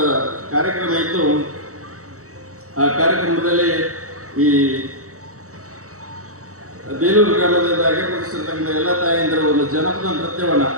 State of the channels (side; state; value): left; late; 0.65 ms